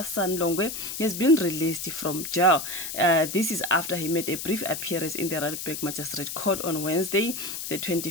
son Longwe has been released from jail. This is after he made a brief appearance in the Randburg Magistrate Court on Wednesday the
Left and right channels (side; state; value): left; noise; hiss, 6 dB below the sound